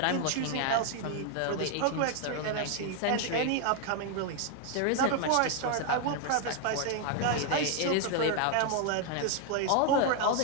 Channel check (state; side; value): different; both; correlation 0.00